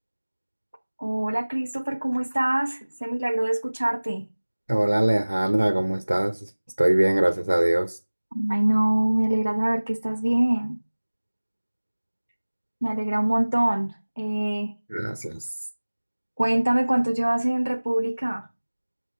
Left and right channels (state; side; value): inverted; both; correlation -1.00